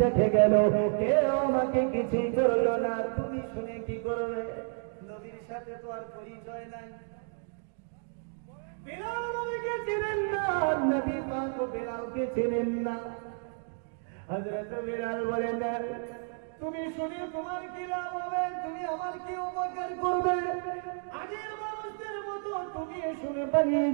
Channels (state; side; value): silent; left; 57 dB below the other